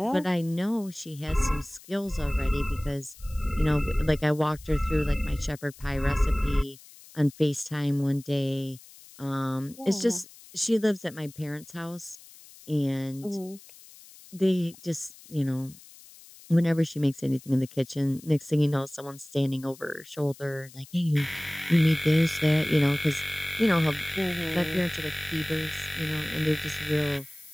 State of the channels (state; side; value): noise; left; hiss, 21 dB below the sound